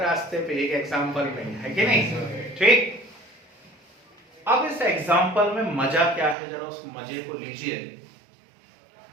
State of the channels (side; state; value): left; drops out; at 6.4 s